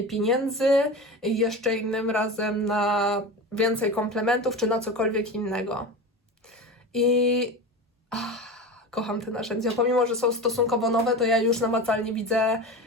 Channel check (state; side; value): normal; both; correlation 0.28